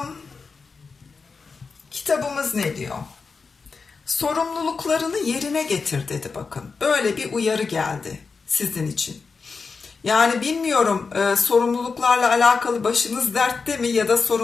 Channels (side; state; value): right; quieter; 4.8 dB